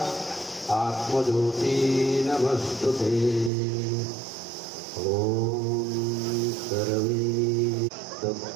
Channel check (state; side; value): drops out; left; at 3.5 s